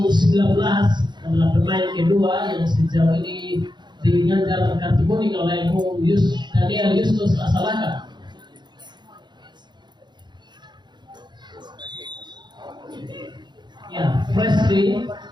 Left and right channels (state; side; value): late; left; 0.21 ms